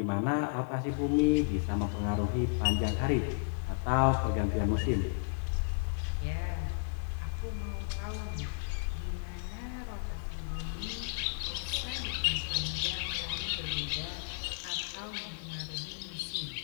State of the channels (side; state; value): right; silent; digital silence